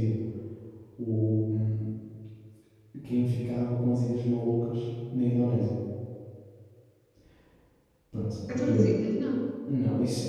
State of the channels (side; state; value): both; identical; correlation 1.00